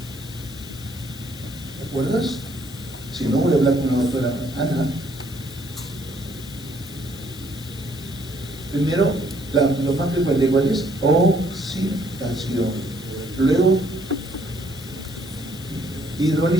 ¿Te acuerdas? Si no, voy a hablar con la doctora Ana. Primero, lo más frecuente, ¿cuál es? Oxidación. Luego,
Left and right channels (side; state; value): left; noise; hiss, 17 dB below the sound